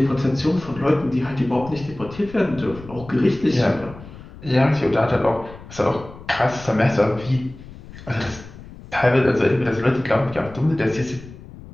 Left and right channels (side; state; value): left; noise; rumble, 17 dB below the sound